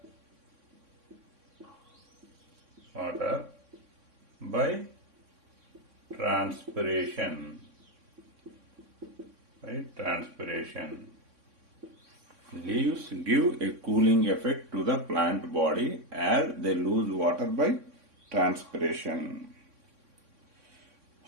by transpiration. Right? Transpiration. Leaves give a cooling effect to the plant body as they lose water by transpiration.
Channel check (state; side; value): late; left; 3.6 ms